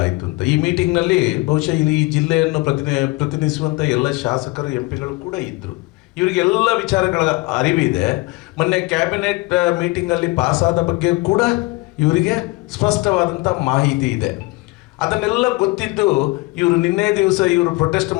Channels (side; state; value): right; quieter; 23.5 dB